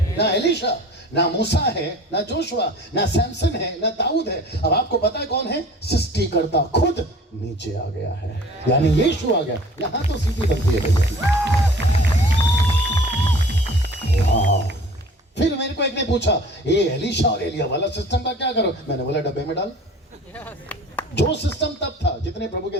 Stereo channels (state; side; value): normal; both; correlation 0.46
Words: ना एलिशा, ना मूसा है ना जोशुआ, ना सैमसन है ना दाऊद है। अब आपको पता है कौन है? सृष्टिकर्ता खुद नीचे आ गया है, यानी यीशु आ गया। यहां तो सीटी बनती है भैया। फिर मेरे को एक ने पूछा ये एलिशा और एलिया वाला सिस्टम का क्या करो? मैंने बोला डब्बे में डाल। जो सिस्टम तब था, जितने प्रभु के